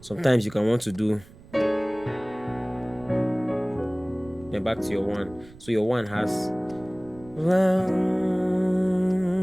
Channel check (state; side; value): noise; right; rumble, 21 dB below the sound